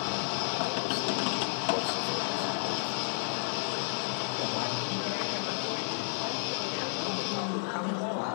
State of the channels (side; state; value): right; silent; 57 dB below the other